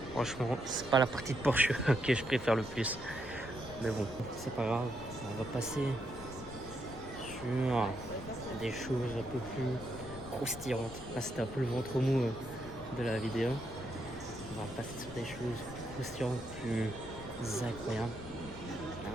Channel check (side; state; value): left; noise; rumble, 13 dB below the sound